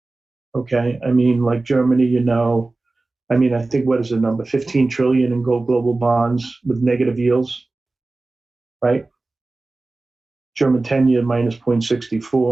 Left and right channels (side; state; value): left; quieter; 3.3 dB